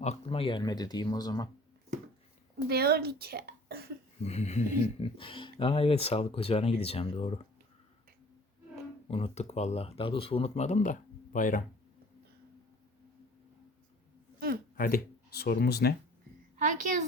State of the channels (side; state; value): both; normal; correlation 0.50